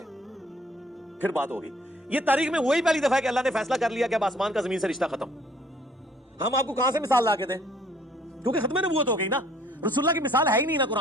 پھر بات ہوگی. یہ تاریخ میں وہی پہلی دفعہ ہے کہ اللہ نے فیصلہ کر لیا کہ اب آسمان کا زمین سے رشتہ ختم. ہم آپ کو کہاں سے مثال لا کے دیں؟ کیونکہ ختم نبوت ہو گئی نا. رسول اللہ کی مثال ہے ہی نہیں نا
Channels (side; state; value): both; normal; correlation 0.60